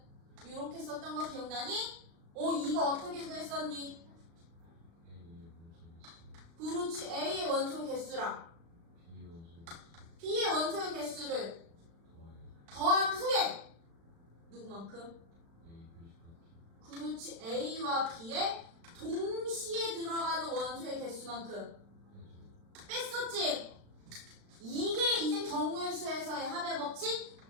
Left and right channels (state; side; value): late; left; 36 ms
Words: 이렇게 썼던 거 기억나니? 이거 어떻게 구했었니? 그렇지. A의 원소 개수랑 B의 원소의 개수를 더한 후에 누구만큼? 그렇지. A와 B의 동시에 들어가는 원소의 개수만큼 뺐었지? 이게 이제 경우의 수에서의 합의 법칙